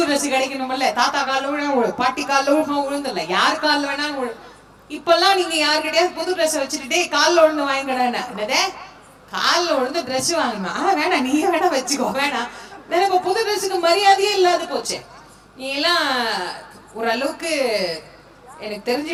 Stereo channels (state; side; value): identical; both; correlation 1.00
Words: ட்ரெஸ் கிடைக்கணும்ல, தாத்தா காலில் விழ பாட்டி காலில் விழுவோம், உழுந்துல யார் காலில் வேணாலும் விழு. இப்பெல்லாம் நீங்க யாருக்கிட்டையாவது புது ட்ரெஸ் வச்சுக்கிட்டே காலில் உழுந்து வாங்கிக்கடானே, என்னதே காலில் விழுந்து ட்ரெஸ் வாங்கணும், வேணாம் நீயே வேணா வச்சுக்கோ வேணாம். இப்ப புது ட்ரெஸ்ஸுக்கு மரியாதையே இல்லாத போச்சு. நீ எல்லாம் ஓரளவுக்கு எனக்கு